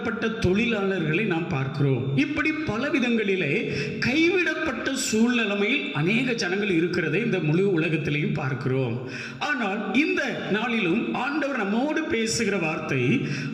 தொழிலாளர்களை நாம் பார்க்கிறோம். இப்படி பல விதங்களிலே கைவிடப்பட்ட சூழ்நிலைமையில் அநேக ஜனங்கள் இருக்கிறதை இந்த முழு உலகத்திலையும் பார்க்கிறோம். ஆனால் இந்த நாளிலும் ஆண்டவர் நம்மோடு பேசுகிற வார்த்தை,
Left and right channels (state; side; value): identical; both; correlation 1.00